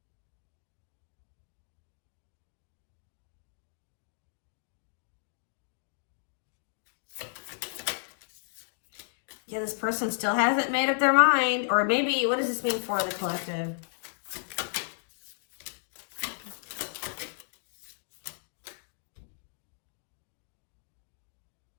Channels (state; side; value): silent; right; digital silence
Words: Yeah, this person still hasn't made up their mind. Or maybe, what does this mean for the collective?